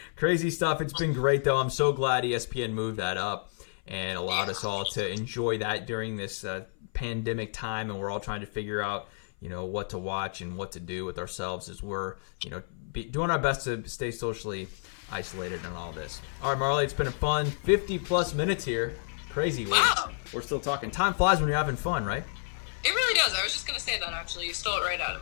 Crazy stuff. It's been great, though. I'm so glad ESPN moved that up and allowed us all to enjoy that during this pandemic time, and we're all trying to figure out, what to watch and what to do with ourselves as we're, doing our best to stay socially isolated and all this. All right, Marlee, it's been a fun 50-plus minutes here. Crazy. Wow. We're still talking. Time flies when you're having fun, right? It really does. I was just going to say that, actually. You stole it right out of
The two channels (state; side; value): silent; right; 55 dB below the other